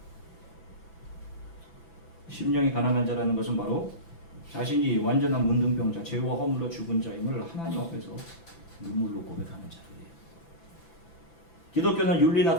심령이 가난한 자라는 것은 바로 자신이 완전한 문둥병자, 죄와 허물로 죽은 자임을 하나님 앞에서 눈물로 고백하는 자들이에요. 기독교는 윤리나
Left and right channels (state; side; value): late; right; 6.0 ms